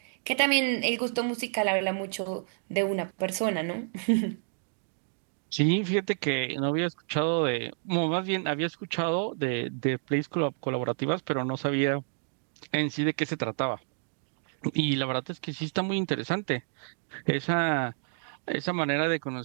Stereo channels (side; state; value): left; silent; digital silence